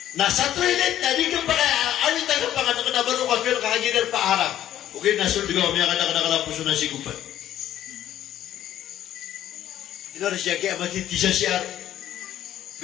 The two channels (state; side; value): quieter; right; 11.9 dB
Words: nasa toilet na hindi ka pa kayo awit ang pangalan na baro ka pero kakadiya na paharap okay na sud ka umiyak na nakalapuso na sigupan. Ito na siya kaya matiti siya siya.